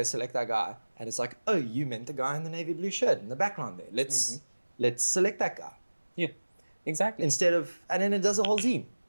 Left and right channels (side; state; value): both; inverted; correlation -1.00